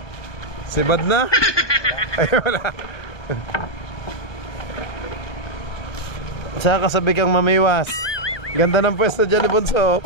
Sibad na? Ay, wala. Saka kasabi kang mamiwas. Ganda ng pwesto dyan ni Bunso.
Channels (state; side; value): late; right; 1.2 ms